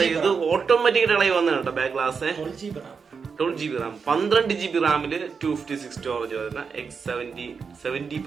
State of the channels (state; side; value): quieter; left; 5.6 dB